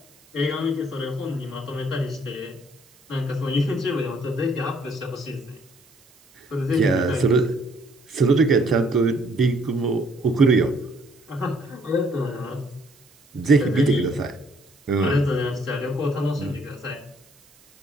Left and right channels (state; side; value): noise; right; hiss, 29 dB below the sound